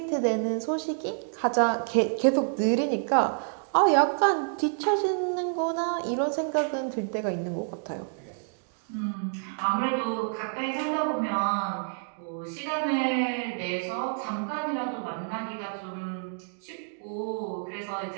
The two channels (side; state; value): left; silent; digital silence